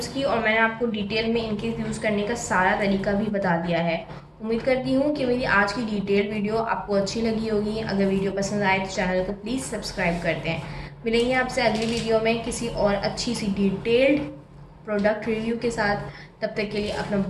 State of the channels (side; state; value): both; identical; correlation 1.00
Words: की, और मैंने आपको डिटेल में इनके यूज़ करने का सारा तरीका भी बता दिया है। उम्मीद करती हूँ कि मेरी आज की डिटेल वीडियो आपको अच्छी लगी होगी। अगर वीडियो पसंद आए तो चैनल को प्लीज़ सब्सक्राइब कर दें। मिलेंगे आपसे अगली वीडियो में किसी और अच्छी सी डिटेल्ड प्रोडक्ट रिव्यू के साथ। तब तक के लिए अपना